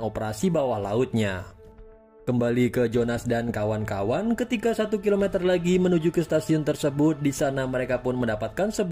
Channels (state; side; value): identical; both; correlation 1.00